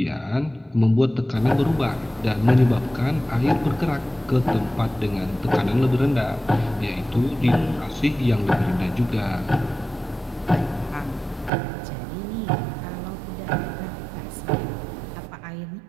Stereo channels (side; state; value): left; drops out; at 11.5 s